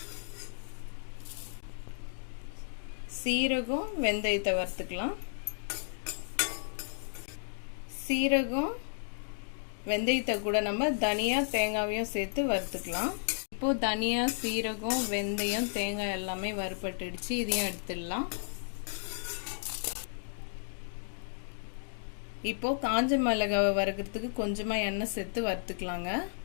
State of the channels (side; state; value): right; silent; digital silence